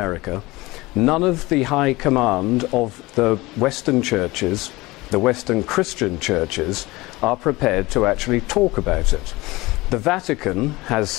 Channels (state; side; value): quieter; right; 21.1 dB